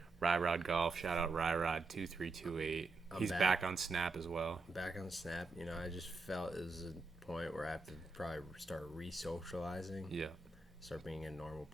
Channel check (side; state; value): left; quieter; 3.6 dB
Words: Ryrod Golf. Shout out Ryrod2328. He's back on Snap as well. Back on Snap. I just felt it was a point where I have to probably start re-socializing. Yeah. Start being a normal